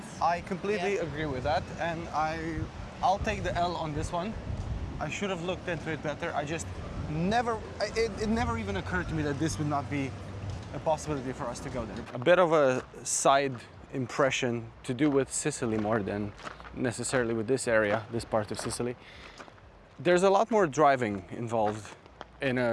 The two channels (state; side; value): identical; both; correlation 1.00